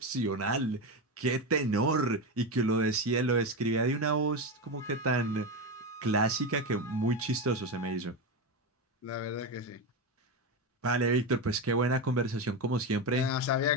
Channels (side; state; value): both; normal; correlation 0.14